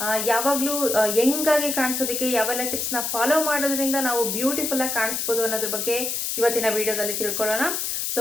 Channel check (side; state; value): left; noise; hiss, 1 dB below the sound